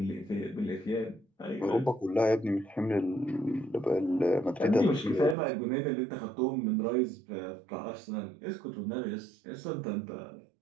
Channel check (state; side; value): drops out; left; at 5.4 s